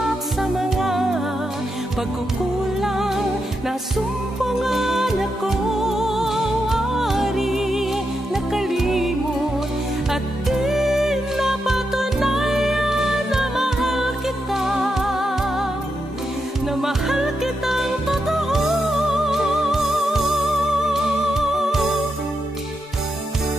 sa mga pagkukulang na sumpangan ako, ari nakalimot at di napatunayan na mahal kita, na mahal kitang totoo.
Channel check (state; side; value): normal; both; correlation 0.85